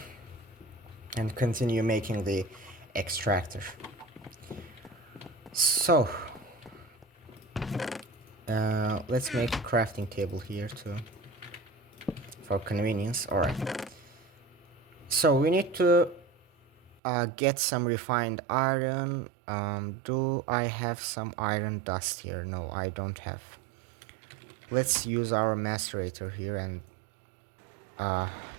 and continue making the extractor. So let's make a crafting table here too for convenience. Alright, so we need to get some refined iron. Do I have some iron dust here? No, I don't have. Let's use our macerator here and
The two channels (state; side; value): drops out; left; at 17.0 s